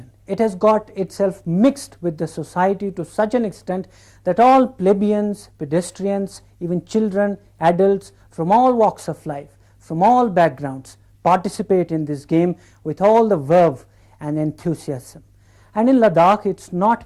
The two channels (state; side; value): identical; both; correlation 1.00